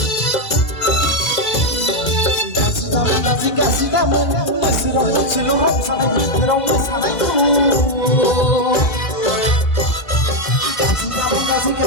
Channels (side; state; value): right; late; 2.0 ms